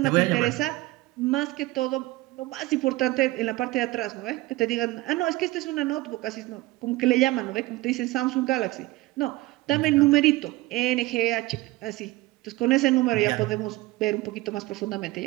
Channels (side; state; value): left; quieter; 19.6 dB